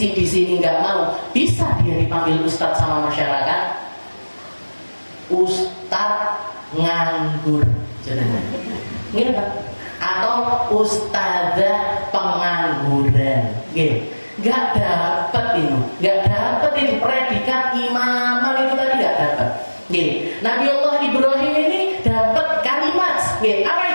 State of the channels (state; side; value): inverted; both; correlation -1.00